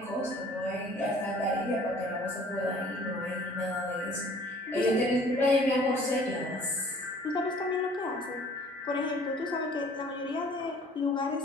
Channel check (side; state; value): both; normal; correlation 0.52